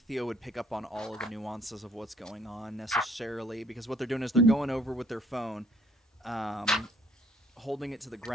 Theo would pick up on all of the nuances of what's going on necessarily, because what they're doing is they're going over with their phone, holding it to the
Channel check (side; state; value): both; normal; correlation 0.63